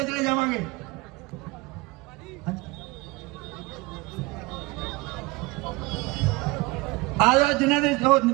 चले जावांगे। आ जाओ जिन्हों ने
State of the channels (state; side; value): quieter; left; 23.3 dB